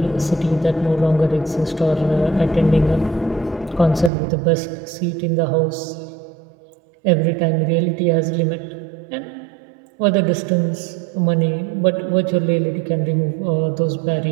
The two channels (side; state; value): left; drops out; at 4.1 s